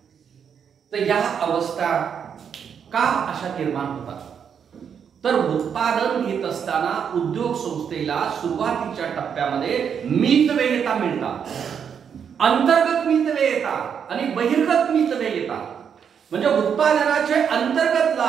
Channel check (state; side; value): quieter; left; 7.5 dB